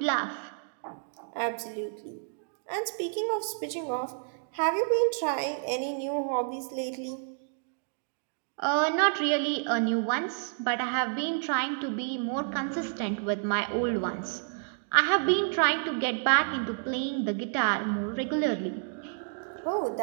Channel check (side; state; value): left; silent; digital silence